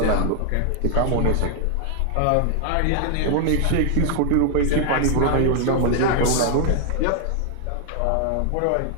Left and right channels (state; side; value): different; both; correlation 0.00